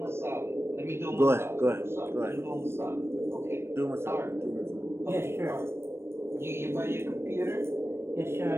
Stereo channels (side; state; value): left; late; 0.12 ms